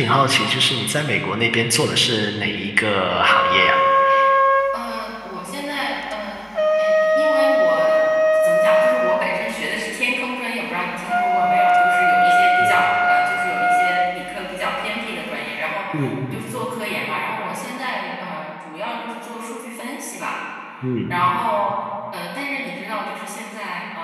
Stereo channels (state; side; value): identical; both; correlation 1.00